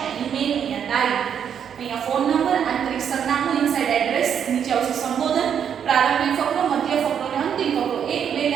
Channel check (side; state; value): left; quieter; 8.2 dB